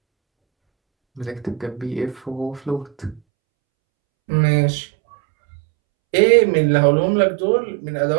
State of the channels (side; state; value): left; drops out; at 3.2 s